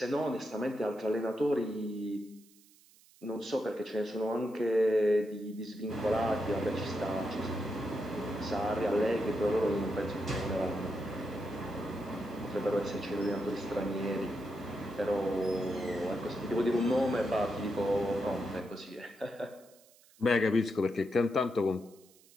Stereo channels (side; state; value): right; noise; hiss, 27 dB below the sound